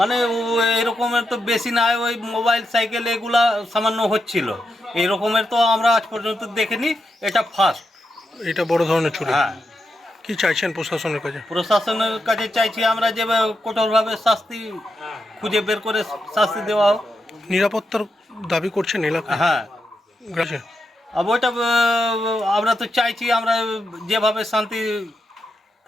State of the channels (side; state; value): both; normal; correlation 0.85